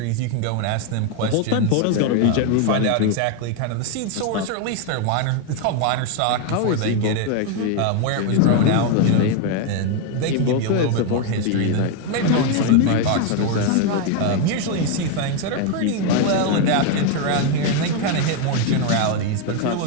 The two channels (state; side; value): different; both; correlation 0.01